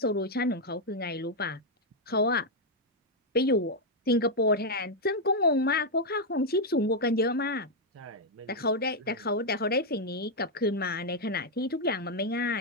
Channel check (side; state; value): both; normal; correlation 0.00